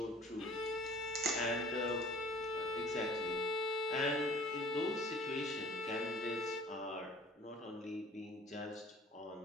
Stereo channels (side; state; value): both; normal; correlation 0.49